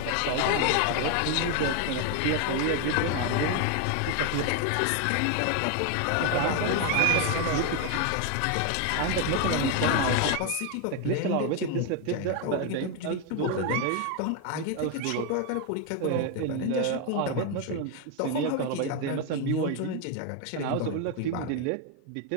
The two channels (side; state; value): both; different; correlation 0.01